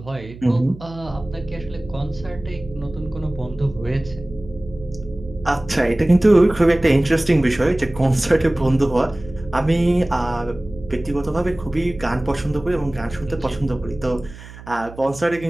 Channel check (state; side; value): noise; right; hum, 17 dB below the sound